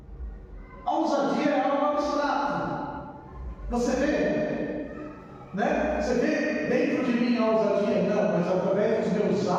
A ousadia é algo abstrato. Você vê, né? Você vê dentro de mim a ousadia? Não, mas através dos meus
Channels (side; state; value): both; identical; correlation 1.00